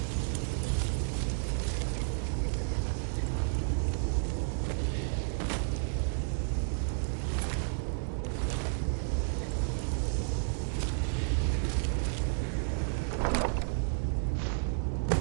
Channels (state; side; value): silent; left; digital silence